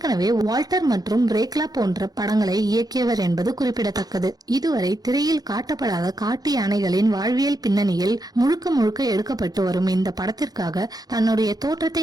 வால்டர் மற்றும் ரேக்லா போன்ற படங்களை இயக்கியவர் என்பது குறிப்பிடத்தக்கது. இதுவரை திரையில் காட்டப்படாத காட்டு யானைகளின் வாழ்வியல் பின்னணியில் முழுக்க முழுக்க எடுக்கப்பட்டு வரும் இந்த படத்திற்காக தன்னுடைய தோற்றத்தை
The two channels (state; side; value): late; left; 0.19 ms